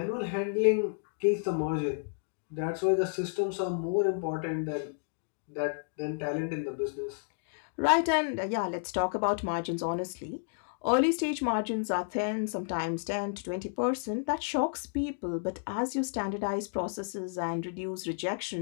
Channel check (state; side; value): silent; right; digital silence